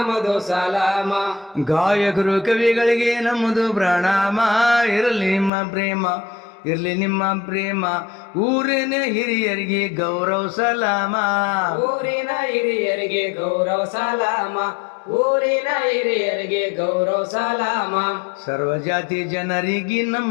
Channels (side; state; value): right; drops out; at 5.5 s